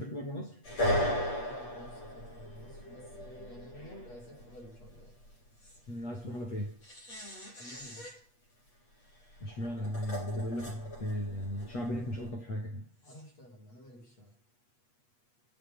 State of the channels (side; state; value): right; late; 8.3 ms